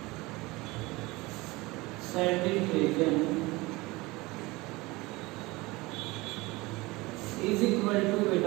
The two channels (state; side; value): quieter; left; 22.2 dB